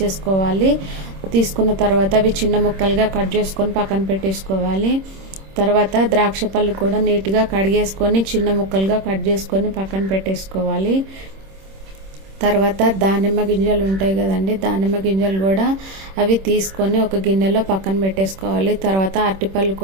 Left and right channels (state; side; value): late; left; 26 ms